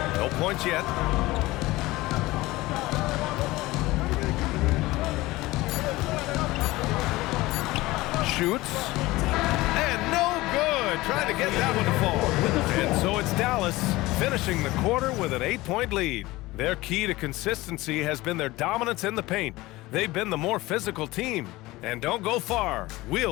No points yet. Shoots. And no good. Trying to get that one to fall. And so it's Dallas finishing the quarter with an 8-point lead. Their key to consistency has been their dominance in the paint. They've been the more physical team. And don't go far.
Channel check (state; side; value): quieter; right; 19.4 dB